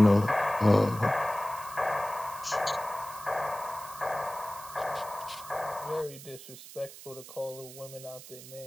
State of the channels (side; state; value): right; noise; hiss, 15 dB below the sound